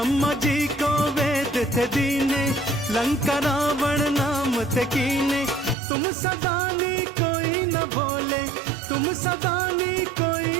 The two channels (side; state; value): left; drops out; at 5.8 s